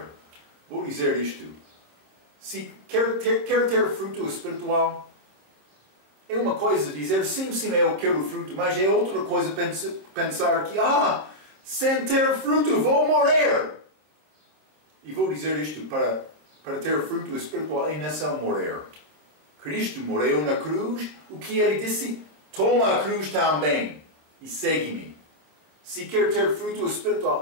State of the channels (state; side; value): late; left; 27 ms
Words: Vou dizer isto. Se quer ter fruto espiritual, é uma coisa dizer, sim, eu quero fruto, mas é outra coisa pensar que, sem ter fruto vou morrer. E vou dizer isto, para ter fruto espiritual é não morrer. Cristo morreu na cruz, o que ele disse? Toma a cruz também e segue-me. Se quer ter fruto